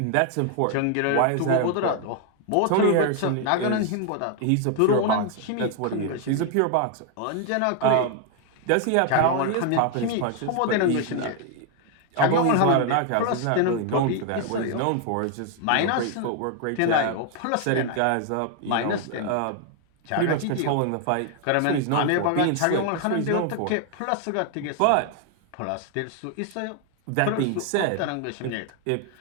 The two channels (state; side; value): different; both; correlation 0.00